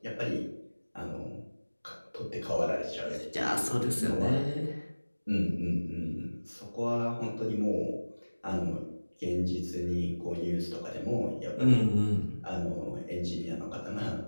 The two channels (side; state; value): both; inverted; correlation -1.00